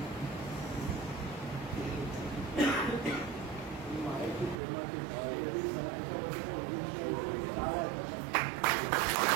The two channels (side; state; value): left; drops out; at 4.6 s